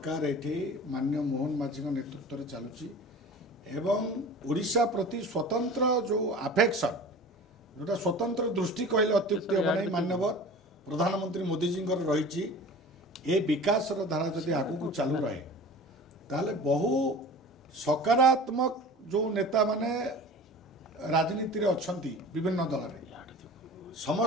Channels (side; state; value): both; normal; correlation 0.39